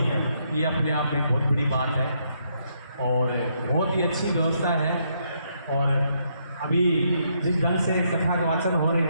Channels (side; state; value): both; inverted; correlation -0.75